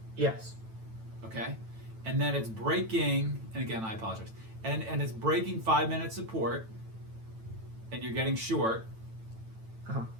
Yes. Okay. And then it's breaking, and again, I apologize, and it's breaking 5-minute support, and you're getting short. Uh-huh.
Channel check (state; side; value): late; left; 9.0 ms